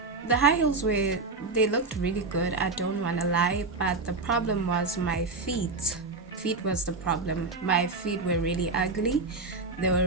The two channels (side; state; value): left; quieter; 3.7 dB